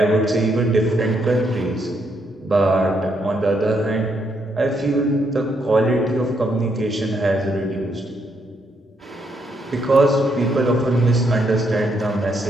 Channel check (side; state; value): both; normal; correlation 0.76